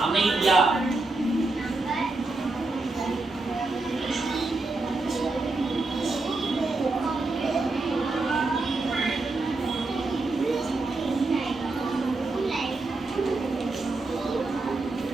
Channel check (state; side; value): quieter; left; 3.3 dB